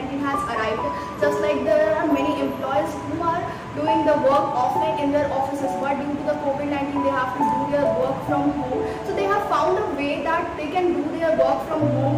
has arrived, just like there are many employees who are doing the work offline in their offices, but due to the COVID-19 they have to do their work from home. So they have found a way that they can do their work from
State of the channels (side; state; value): both; identical; correlation 1.00